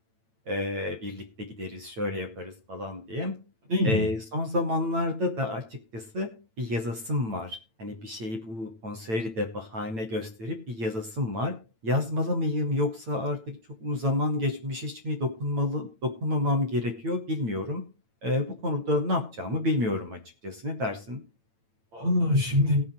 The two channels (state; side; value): late; left; 8.9 ms